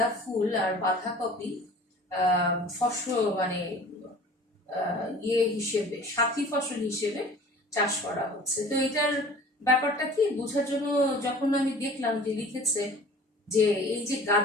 ফুল আর বাঁধাকপি ফসল মানে হিসেবে, সাথী ফসল হিসেবে চাষ করা হচ্ছে। তো এটার ব্যাপারটা কি বোঝার জন্য যখন আমি দেখলাম যে লিখেছে যে এই যে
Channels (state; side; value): normal; both; correlation 0.45